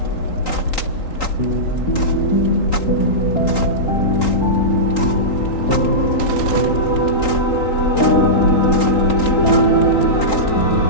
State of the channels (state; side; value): late; right; 3.8 ms